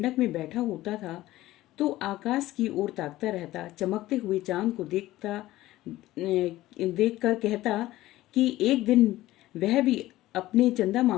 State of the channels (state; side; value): quieter; right; 16.3 dB